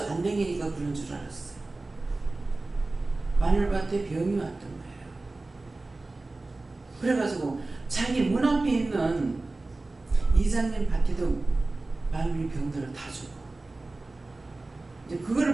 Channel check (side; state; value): left; quieter; 3.2 dB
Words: 안 댕기니까 그런 줄 알았어요. 마늘밭에 병이 왔던 거예요. 그래가지고 자기 문 앞에 있는 이장님 밭에도 마늘이 병들어 다 죽어. 이제